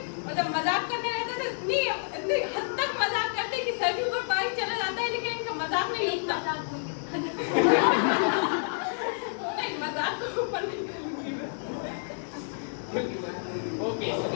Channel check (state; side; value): silent; right; digital silence